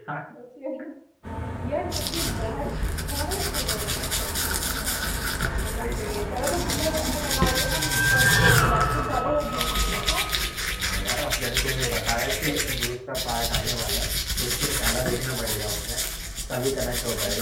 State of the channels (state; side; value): identical; both; correlation 1.00